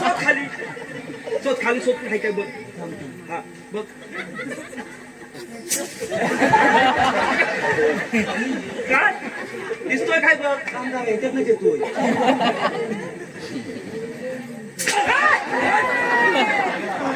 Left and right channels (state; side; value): identical; both; correlation 1.00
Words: खाली शोध खाली शोध काय काय बघ. हा बघ. काय दिसतोय काय बघ कामगार याच्यातनं येतोय